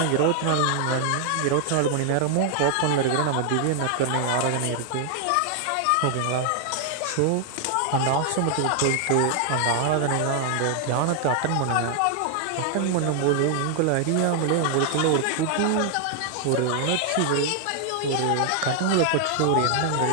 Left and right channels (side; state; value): both; different; correlation 0.00